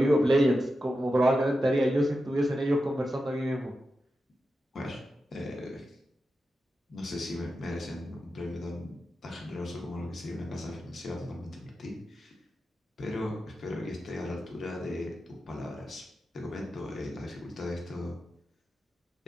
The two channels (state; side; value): normal; both; correlation 0.90